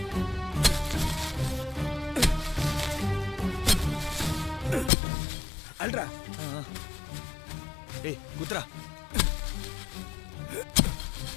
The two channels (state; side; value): drops out; right; at 4.9 s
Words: அல்ரா. ஏய் குத்ரா.